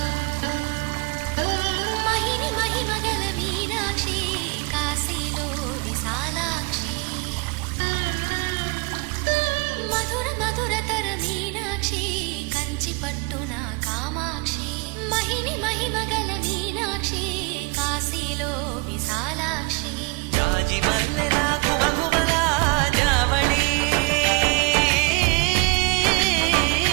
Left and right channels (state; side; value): quieter; left; 28.4 dB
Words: మహిని మహిమగల మీనాక్షి కాశీలో విశాలాక్షి మధుర మధురతర మీనాక్షి కంచి పట్టున కామాక్షి మహిని మహిమగల మీనాక్షి కాశీలో విశాలాక్షి జాజి మల్లెలా గుమగుమలా జావళి